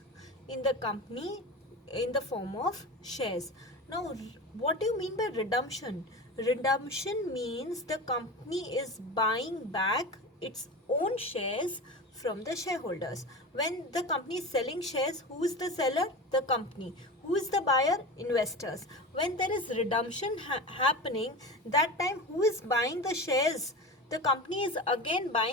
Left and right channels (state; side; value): normal; both; correlation 0.28